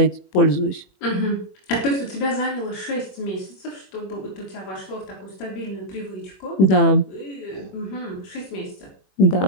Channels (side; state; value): right; late; 21 ms